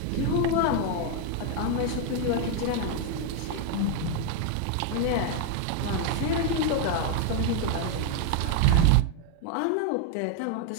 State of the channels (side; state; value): both; different; correlation 0.00